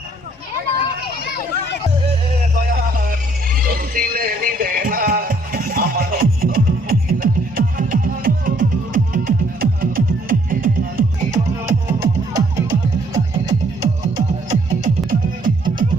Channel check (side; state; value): both; normal; correlation 0.64